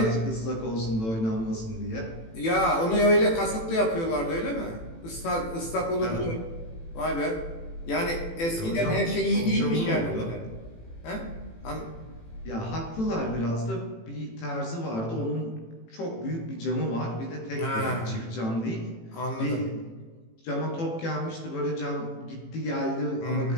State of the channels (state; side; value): late; right; 18 ms